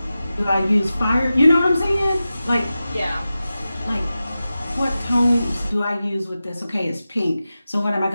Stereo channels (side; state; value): both; inverted; correlation -0.94